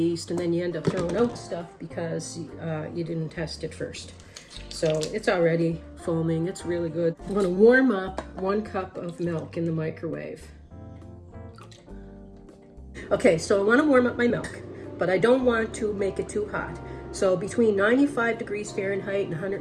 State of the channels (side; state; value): both; identical; correlation 1.00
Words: and then you end up throwing out stuff because you didn't test it first. So it's already foaming. It's really good. I'm going to warm up 1 cup of milk in the microwave. Okay, so I want to warm up my milk, but I don't want to make it too hot. So between 95 degrees Fahrenheit and